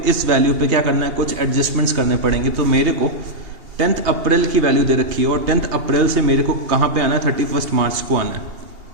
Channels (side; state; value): left; late; 2.8 ms